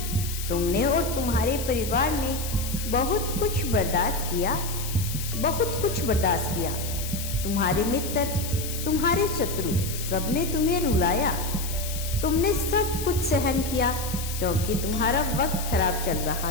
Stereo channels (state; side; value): noise; left; hiss, 8 dB below the sound